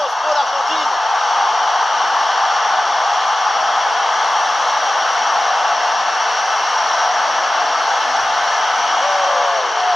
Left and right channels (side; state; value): both; normal; correlation 0.95